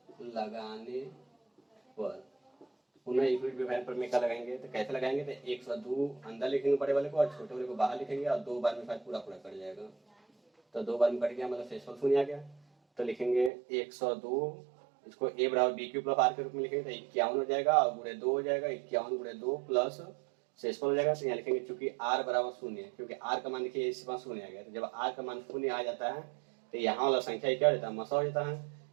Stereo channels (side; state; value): left; drops out; at 13.5 s